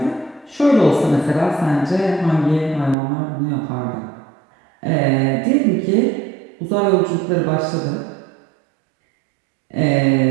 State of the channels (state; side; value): drops out; left; at 3.0 s